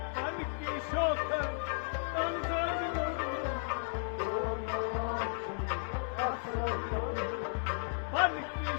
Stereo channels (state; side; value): silent; right; digital silence